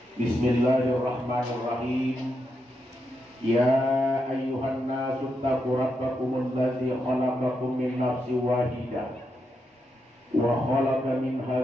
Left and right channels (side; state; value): both; normal; correlation 0.83